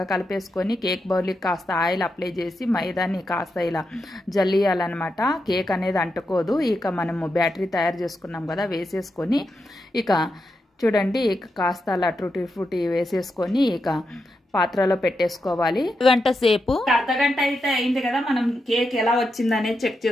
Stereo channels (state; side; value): normal; both; correlation 0.86